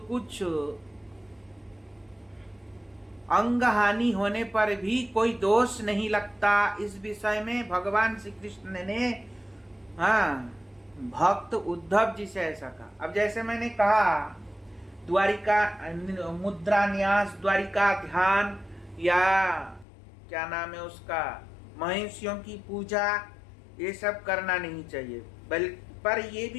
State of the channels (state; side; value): drops out; right; at 19.9 s